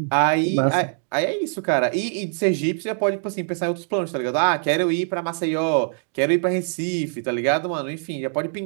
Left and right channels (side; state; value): left; silent; 63 dB below the other